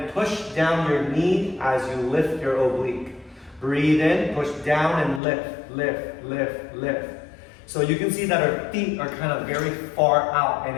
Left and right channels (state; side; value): drops out; right; at 5.2 s